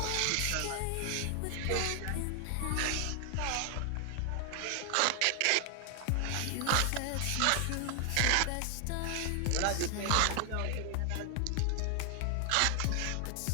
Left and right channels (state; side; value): different; both; correlation 0.00